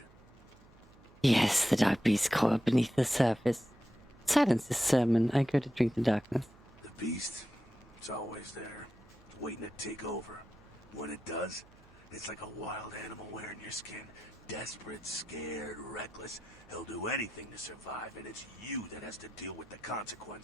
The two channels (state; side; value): noise; right; hum, 26 dB below the sound